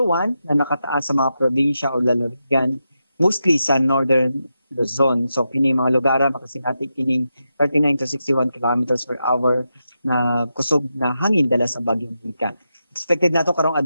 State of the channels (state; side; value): inverted; both; correlation -0.87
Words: 1 na nakataas sa mga probinsya o lalawigan, mostly sa northern Luzon. So kini mga lugar makasinati kining 39 to 61 kilometers per hour na kusog na hangin dala sa bagyong Nika. Expected nato karong